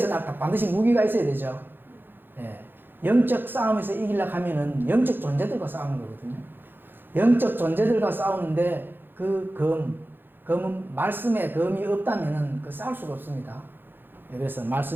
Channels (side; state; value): left; late; 0.098 ms